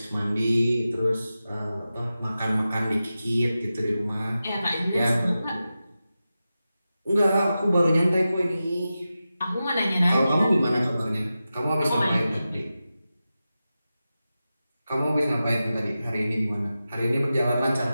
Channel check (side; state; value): both; inverted; correlation -0.93